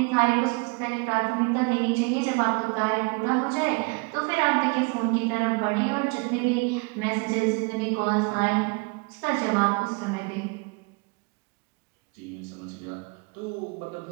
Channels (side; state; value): left; quieter; 30.3 dB